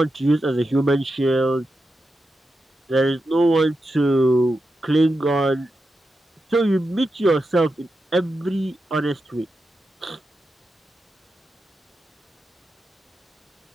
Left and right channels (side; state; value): both; normal; correlation 0.89